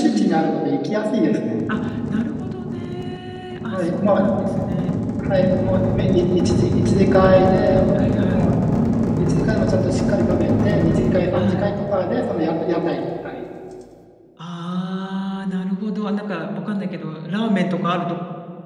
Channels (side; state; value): both; identical; correlation 1.00